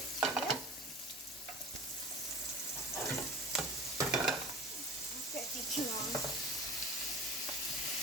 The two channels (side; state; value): both; normal; correlation 0.38